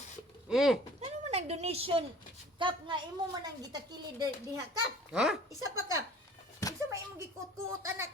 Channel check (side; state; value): both; normal; correlation 0.48